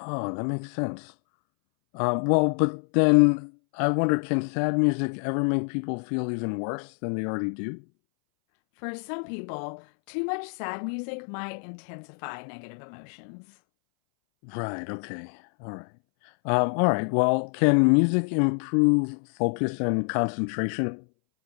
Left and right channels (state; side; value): silent; right; 61 dB below the other